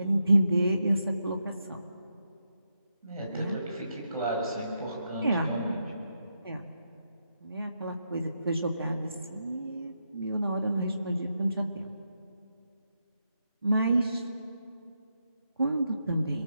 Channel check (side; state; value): both; inverted; correlation -0.84